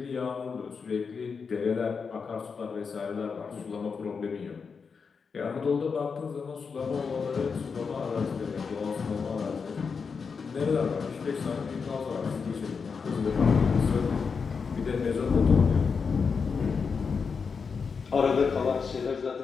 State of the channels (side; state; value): right; quieter; 5.5 dB